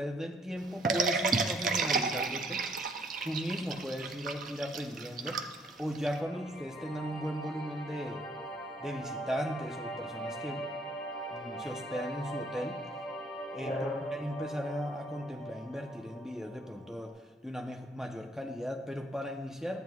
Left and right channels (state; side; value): normal; both; correlation 0.65